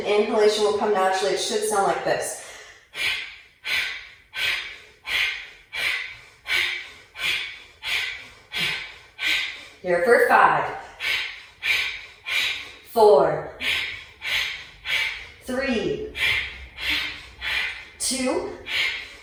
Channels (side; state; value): both; identical; correlation 1.00